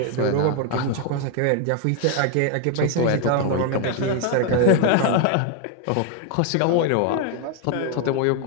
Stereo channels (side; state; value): both; different; correlation 0.00